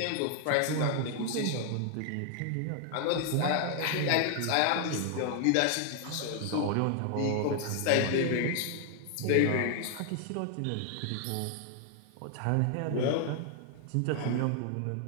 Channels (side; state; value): both; different; correlation 0.00